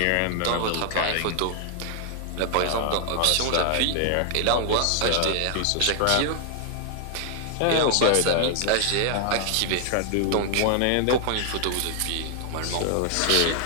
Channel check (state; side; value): different; both; correlation 0.00